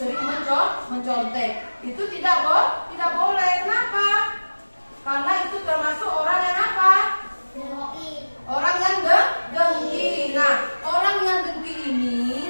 mencontek. Itu tidak boleh. Kenapa? Karena itu termasuk orang yang apa? Orang yang dengki. Nah, orang yang dengki ini,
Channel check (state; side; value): inverted; both; correlation -1.00